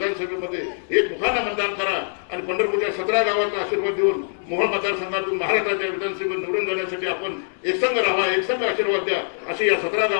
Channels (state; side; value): silent; right; digital silence